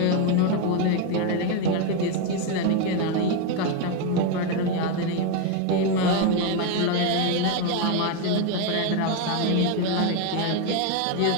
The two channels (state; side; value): different; both; correlation 0.02